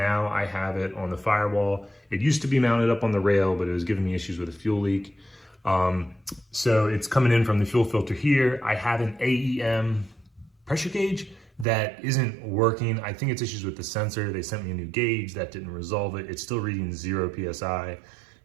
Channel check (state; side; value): drops out; left; at 11.7 s